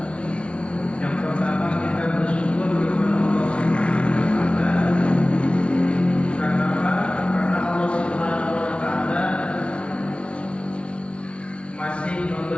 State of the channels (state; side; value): late; right; 0.060 ms